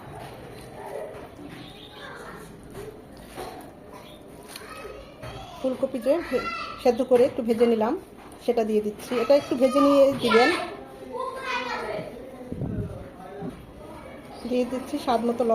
ফুলকপি যে সেদ্ধ করে একটু ভেজে নিলাম, সেটা দিয়ে দিচ্ছি। এটা একটু ভেজে নিয়ে দিবেন। দিয়ে দিচ্ছি স্বাদ মতো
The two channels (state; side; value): identical; both; correlation 1.00